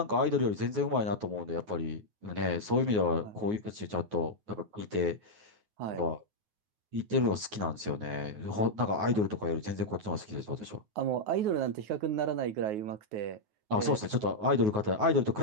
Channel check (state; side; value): late; left; 9.4 ms